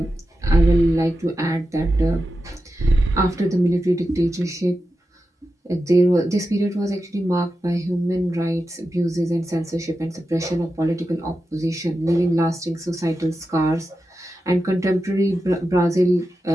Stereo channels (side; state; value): both; normal; correlation 0.91